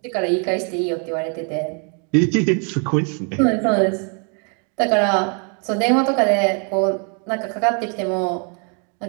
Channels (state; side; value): quieter; left; 39.3 dB